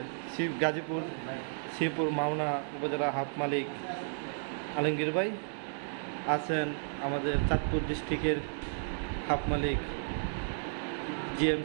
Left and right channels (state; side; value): silent; left; 56 dB below the other